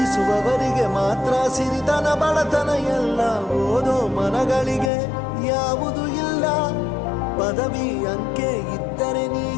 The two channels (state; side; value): drops out; right; at 4.9 s